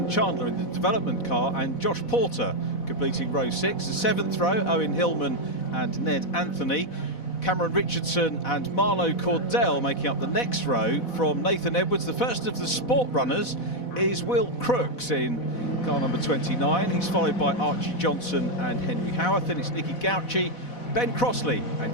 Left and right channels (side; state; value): right; late; 4.1 ms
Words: Chandler in the development car and Josh Porter completing row 6. The 7th row, Owen Hillman and Ned Anthony. Cameron Richardson and Marlo Cordell making up the next row. From Nathan Edwards, the first of the sport runners is Will Crooks in car number 29. He's followed by Archie Johnson and Henry Howarth. Then it's Nicky Gauci, Ben Crossley and